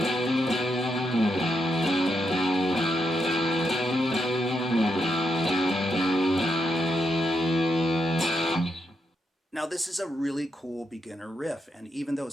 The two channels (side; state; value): both; normal; correlation 0.81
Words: Now this is a really cool beginner riff, and even though